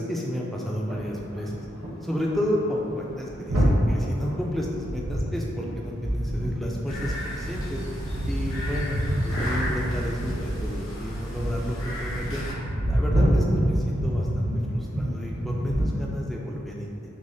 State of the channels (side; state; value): both; normal; correlation 0.86